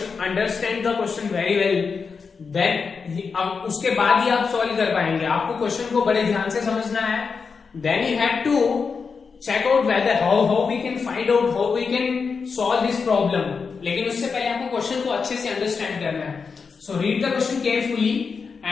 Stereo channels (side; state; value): right; quieter; 5.3 dB